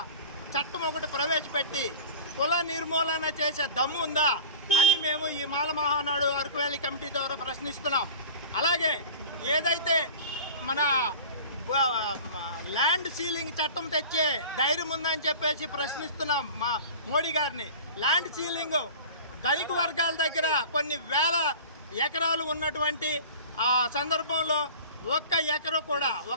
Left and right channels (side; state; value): both; inverted; correlation -0.38